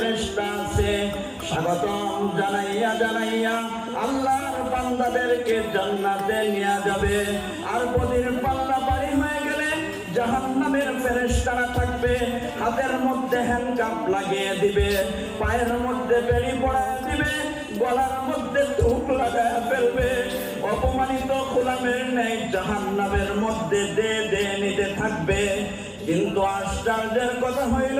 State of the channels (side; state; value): both; identical; correlation 1.00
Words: আছে স্বাগতম জানাইয়া জানাইয়া আল্লাহর বান্দাদেরকে জান্নাতে নিয়ে যাবে। আর বদির পাল্লা পারি হয়ে গেলে জাহান্নামের ফেরেশতারা থাকবে, হাতের মধ্যে হ্যান্ডকাপ লাগিয়ে দিবে, পায়ের মধ্যে বেড়ি পড়ায় দিবে, গলার মধ্যে ধূপ লাগায় ফেলবে। অপমানিত গোলামের ন্যায় জাহান্নামের মধ্যে দে নিতে থাকবে। কিন্তু আশ্চর্যের কথা